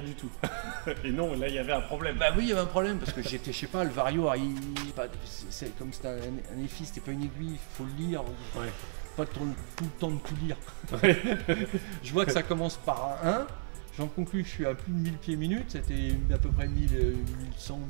du tout. Et non, là il y avait un problème. Bah oui, il y avait un problème parce que j'étais, je sais pas, le Vario, c'est comme c'était un EFI, c'était pas une aiguille, faut le lire, Ouais. pas tout le temps de tout lire. Ouais. Je vois que ça commence par un 1, j'en conclus que je suis à plus de 1000 pieds minutes, c'était à peu près 1100,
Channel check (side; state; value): left; silent; 56 dB below the other